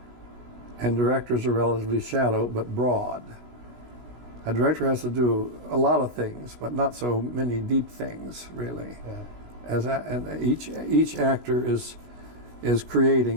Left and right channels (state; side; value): late; left; 16 ms